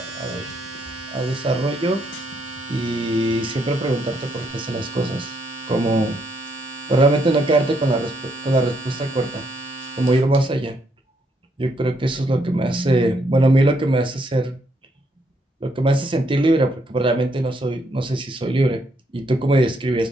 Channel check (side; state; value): both; normal; correlation 0.74